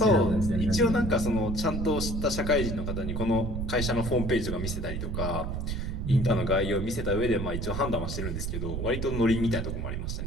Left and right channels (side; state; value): right; noise; rumble, 3 dB below the sound